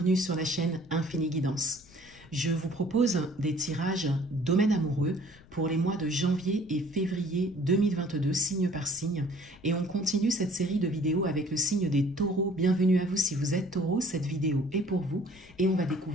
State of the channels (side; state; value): left; noise; rumble, 25 dB below the sound